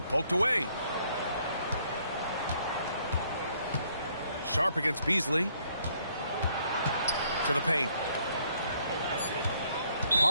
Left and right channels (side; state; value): both; inverted; correlation -0.67